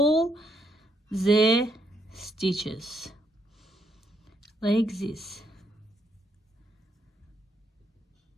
the stitches like this.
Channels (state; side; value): normal; both; correlation 0.74